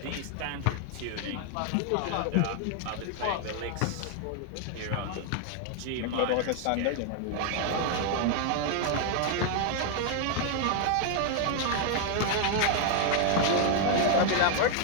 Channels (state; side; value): different; both; correlation 0.00